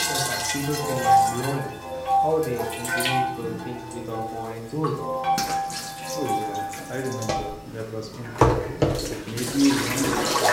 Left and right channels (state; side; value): identical; both; correlation 1.00